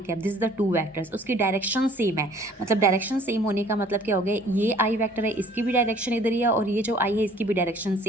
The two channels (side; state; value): both; normal; correlation 0.55